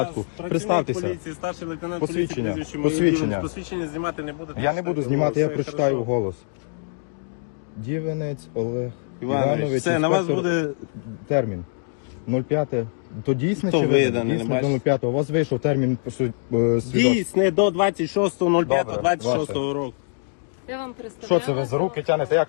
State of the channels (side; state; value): right; silent; digital silence